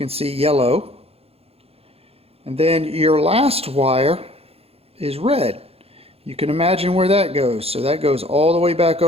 see yellow. And then your last wire is red. You can imagine where that goes. So that goes all the way back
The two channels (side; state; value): left; late; 0.29 ms